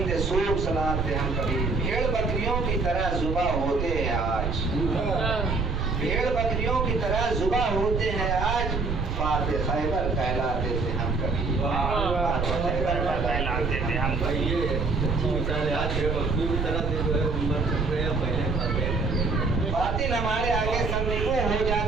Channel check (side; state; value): right; noise; rumble, 1 dB below the sound